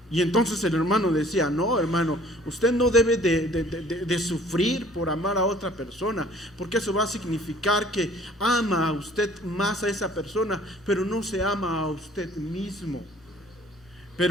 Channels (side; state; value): both; normal; correlation 0.54